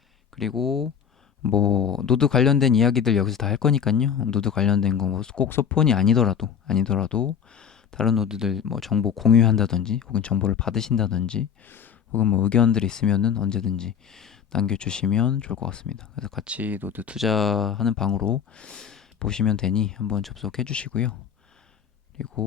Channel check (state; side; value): quieter; right; 7.7 dB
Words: 그리고 뭐 노드 관련된 이야기들 여기서 다 할 거니까요. 노드 관련된 거 뭐 꼭 소폰이 아니더라도 다른 노드들 뭐 정보 공유한다든지 혹은 정보를 받으신다든지 혹은 뭐 의견들이 있으면은 언제든지 남겨주시면 좋을 것 같습니다. 그래서 같이 노드 투자하는 방으로 보시면 되니 한번 접속해 주시고요.